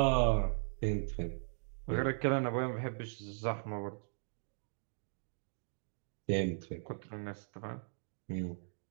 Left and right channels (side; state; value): left; silent; digital silence